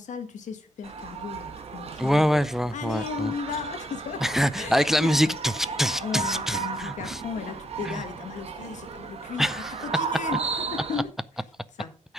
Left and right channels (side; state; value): both; normal; correlation 0.75